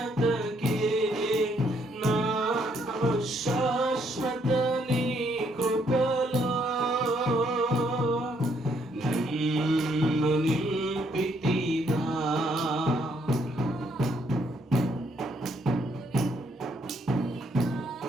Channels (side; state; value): both; normal; correlation 0.71